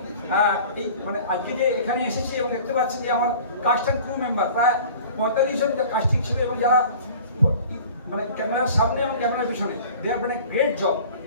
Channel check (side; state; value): both; inverted; correlation -0.44